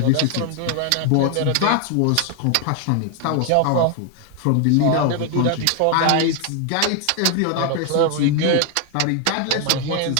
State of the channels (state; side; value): different; both; correlation 0.00